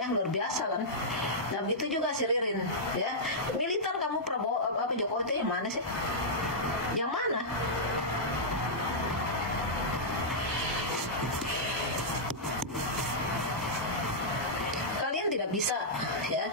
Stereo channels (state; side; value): normal; both; correlation -0.10